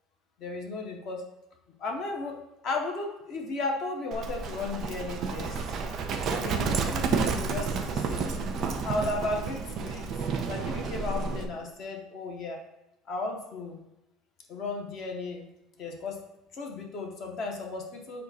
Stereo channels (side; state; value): both; normal; correlation 0.48